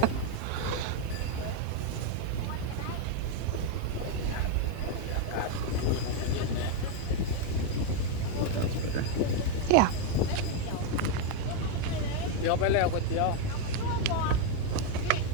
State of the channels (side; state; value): both; different; correlation 0.01